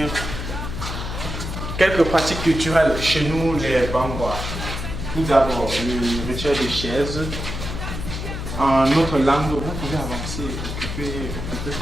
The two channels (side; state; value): left; noise; hum, 6 dB below the sound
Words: Quelques pratiques culturelles chez nous, les Bangwa. Tout d'abord, le rituel des chaises. En notre langue, vous pouvez avancer, occuper